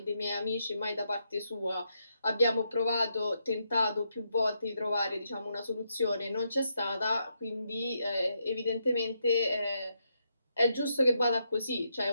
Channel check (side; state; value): both; inverted; correlation -0.80